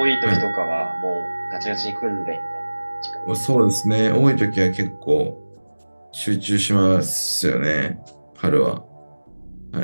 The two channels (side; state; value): both; inverted; correlation -1.00